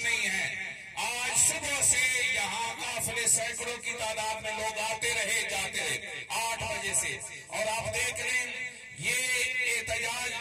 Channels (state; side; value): identical; both; correlation 1.00